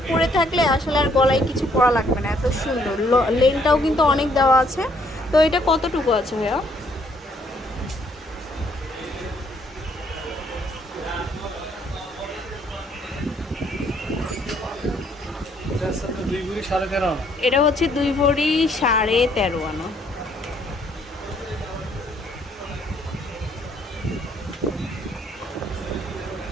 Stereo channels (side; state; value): both; normal; correlation 0.67